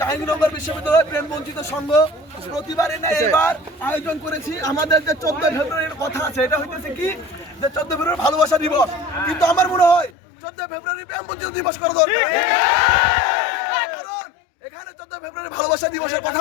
বিশ্ববিদ্যালয় প্রেম বঞ্চিত সংঘ প্রতিবারে না এবার আয়োজন করেছি। আমাদের যে 14 ফেব্রুয়ারির কথা আছে, এটা হইতেছে কি যে 14 ফেব্রুয়ারি ভালোবাসা দিবস, কিন্তু আমার মনে হয় 14 ফেব্রুয়ারি প্রেম বঞ্চিত দিবস করা দরকার। কারণ এখানে 14 ফেব্রুয়ারি ভালোবাসা দিবসের কথা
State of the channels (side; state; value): right; drops out; at 10.1 s